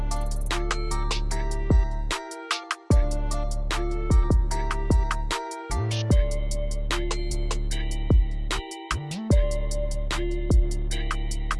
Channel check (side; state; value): both; identical; correlation 1.00